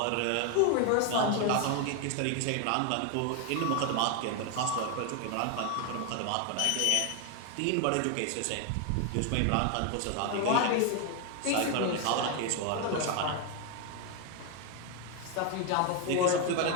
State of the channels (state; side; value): different; both; correlation 0.01